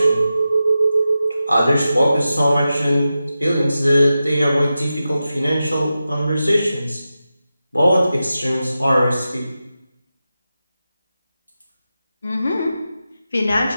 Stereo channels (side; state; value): both; inverted; correlation -0.92